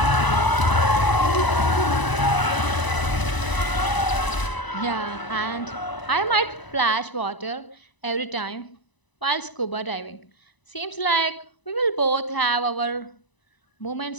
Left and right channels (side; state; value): right; late; 1.0 ms